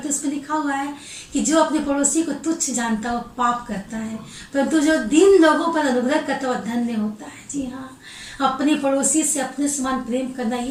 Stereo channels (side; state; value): both; identical; correlation 1.00